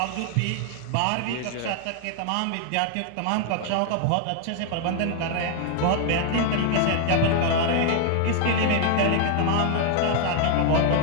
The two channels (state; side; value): different; both; correlation 0.00